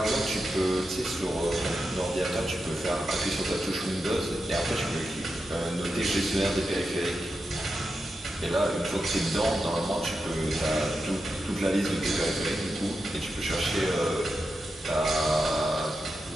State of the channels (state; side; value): normal; both; correlation 0.88